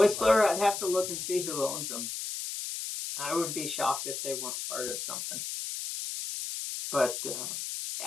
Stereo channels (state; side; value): noise; left; hiss, 5 dB below the sound